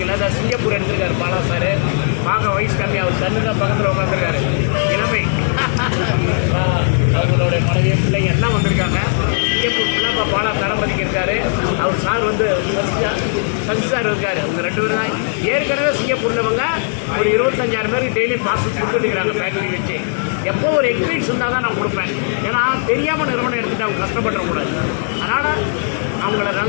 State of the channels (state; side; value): silent; right; 68 dB below the other